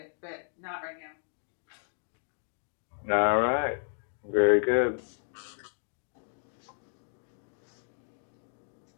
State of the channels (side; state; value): right; silent; digital silence